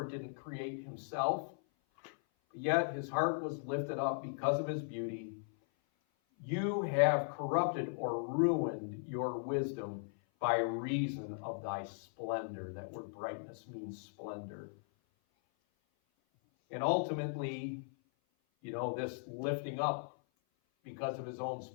didn't create himself, yet his heart was lifted up because of his beauty. You have corrupted or ruined your wisdom by reason of thy splendor. That word brightness means splendor. And ultimately, this lifting up because of his own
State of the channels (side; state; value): right; silent; 53 dB below the other